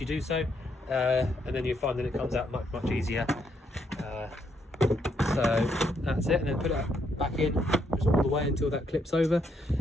do so, and then you'll find that it comes out much easier. So that's it, and then put it back in just all the way until that clips over.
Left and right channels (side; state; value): both; normal; correlation 0.75